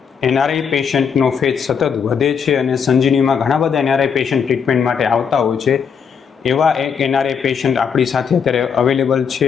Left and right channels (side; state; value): right; quieter; 6.7 dB